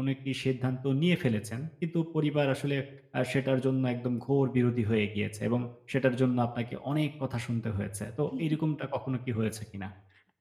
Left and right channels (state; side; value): identical; both; correlation 1.00